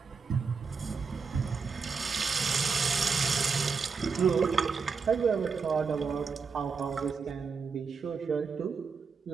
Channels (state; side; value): quieter; left; 5.3 dB